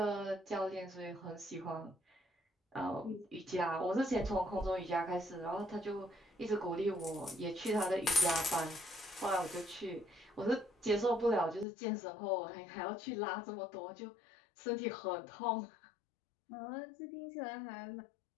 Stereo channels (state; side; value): drops out; right; at 11.7 s